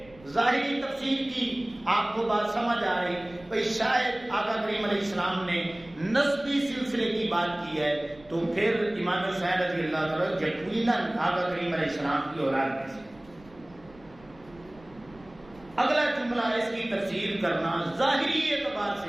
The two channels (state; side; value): noise; right; rumble, 25 dB below the sound